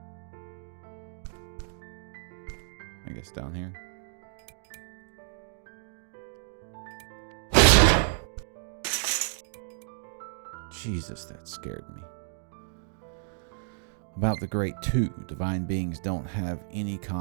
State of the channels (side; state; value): left; silent; digital silence